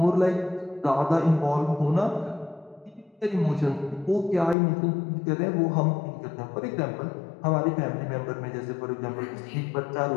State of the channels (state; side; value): drops out; right; at 4.5 s